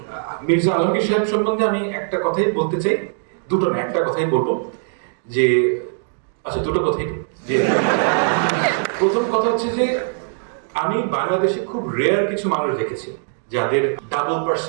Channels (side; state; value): left; silent; digital silence